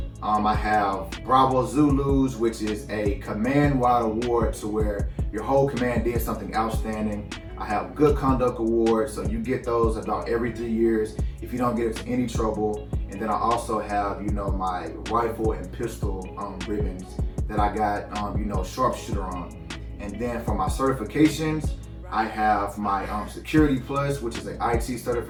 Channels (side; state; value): both; identical; correlation 1.00